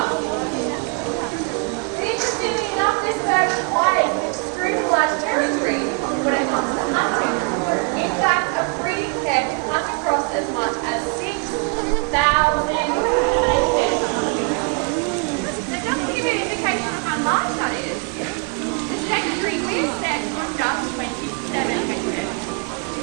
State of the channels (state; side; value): quieter; left; 37.7 dB